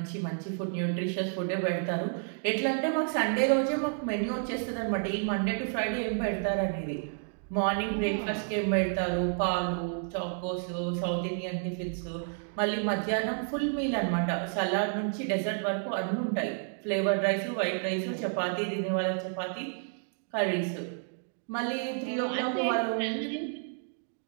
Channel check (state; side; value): silent; left; 57 dB below the other